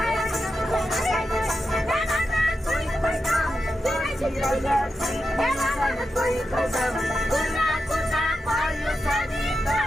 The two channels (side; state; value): both; normal; correlation 0.89